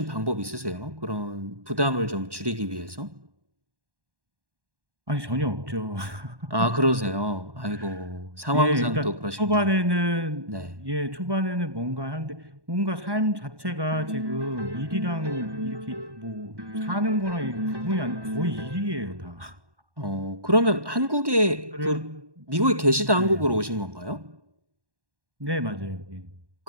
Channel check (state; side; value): late; left; 1.1 ms